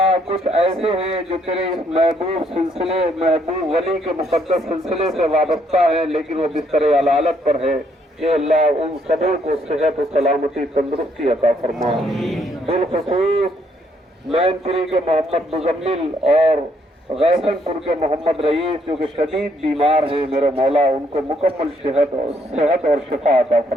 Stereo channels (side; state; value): both; normal; correlation 0.70